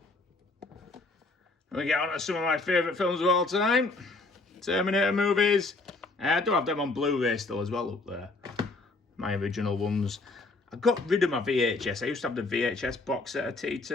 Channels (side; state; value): right; quieter; 3.4 dB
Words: We get on to some of my favourite films of all time. Terminator movies. I do have them on Blu-ray still as well up there. My original ones. I got rid of my VHS. I used to have the VHS box set of